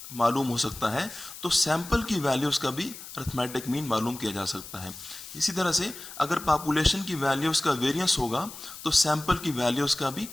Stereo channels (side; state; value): left; noise; hiss, 13 dB below the sound